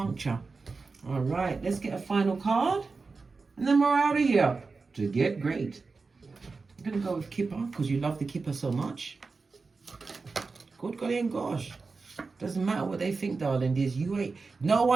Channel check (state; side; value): quieter; left; 4.3 dB